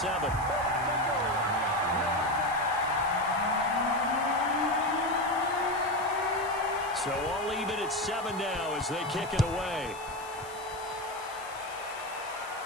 So all even at 7 now as they kick it away.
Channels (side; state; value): left; noise; hiss, 18 dB below the sound